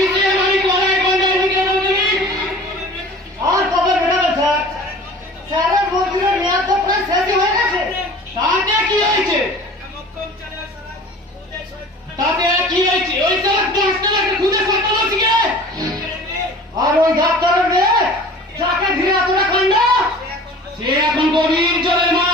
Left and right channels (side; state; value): both; normal; correlation 0.43